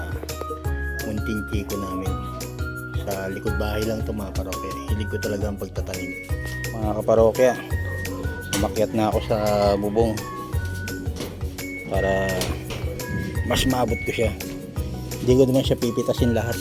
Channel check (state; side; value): identical; both; correlation 1.00